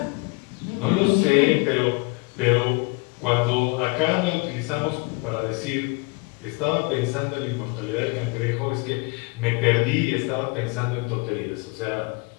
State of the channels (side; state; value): right; quieter; 28.5 dB